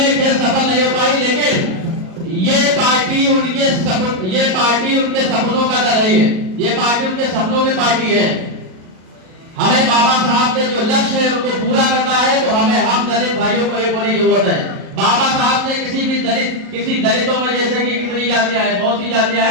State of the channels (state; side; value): late; left; 37 ms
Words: खेल सफल नहीं हो पाई, लेकिन ये पार्टी उनके सपनों का दल है। ये पार्टी उनके सपनों की पार्टी है। हमें बाबा साहब के जो लक्ष्य है उनको पूरा करना है, तो हम दलित भाइयों को एक होने की जरूरत है। बाबा साहब ने किसी दलितों में, जैसे कि कितनी जातियां हैं, बहुत सी जातियां